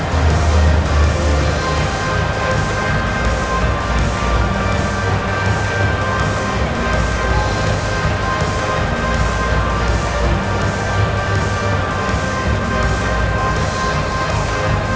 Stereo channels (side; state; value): both; identical; correlation 1.00